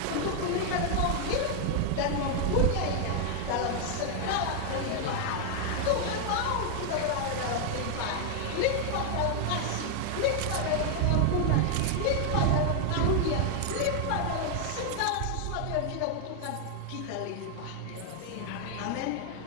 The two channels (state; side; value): different; both; correlation 0.00